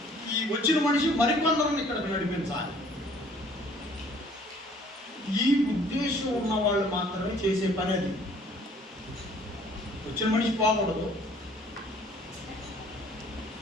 ఈ వచ్చిన మనిషి మరికొందరిని ఇక్కడికి నడిపించాలి. ఈ ఉద్దేశం ఉన్న వాళ్ళు మాత్రమే చేసే పని అది. వచ్చిన మనిషి పోకూడదు,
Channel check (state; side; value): normal; both; correlation 0.56